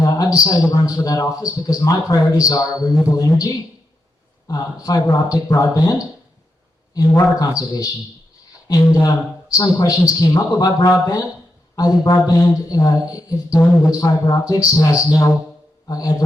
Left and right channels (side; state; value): both; normal; correlation 0.85